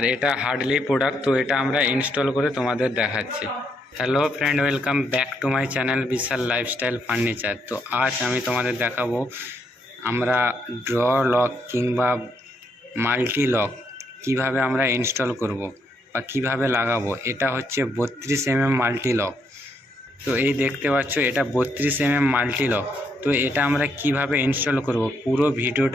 এটা হার্ডলি প্রোডাক্ট, তো এটা আমরা ইনস্টল করে তোমাদের দেখাচ্ছি। Hello friend, welcome back to my channel Vishal lifestyle furniture. তো আজ আমি তোমাদের দেখাবো আমরা ড্র লক কিংবা মাল্টি লক কীভাবে আমরা ইনস্টল করব বা কিভাবে লাগাবো। এটা হচ্ছে 32 mm মাল্টি লক। তো এই দেখতে পাচ্ছ, এটা 32 mm মাল্টি লক। তো এটা আমরা কিভাবে ইনস্টল করব পুরো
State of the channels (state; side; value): normal; both; correlation 0.75